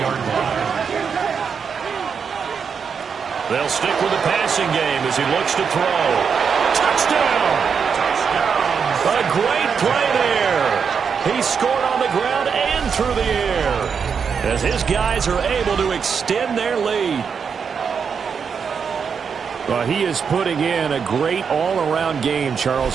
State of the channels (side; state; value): left; quieter; 6.4 dB